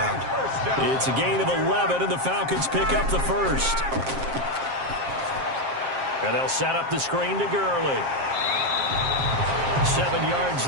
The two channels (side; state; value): left; late; 7.5 ms